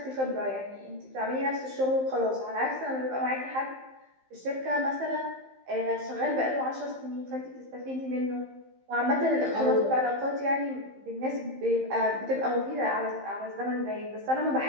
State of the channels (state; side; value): late; left; 15 ms